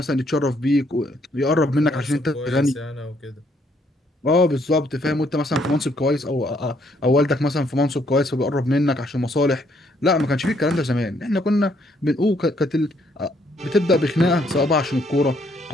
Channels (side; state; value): both; normal; correlation 0.69